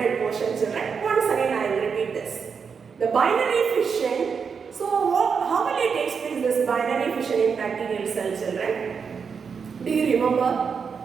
portion children. Once again I will repeat this. The binary fission, so how will it take place this binary fission in bacterial cell children? Do you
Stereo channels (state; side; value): quieter; left; 6.0 dB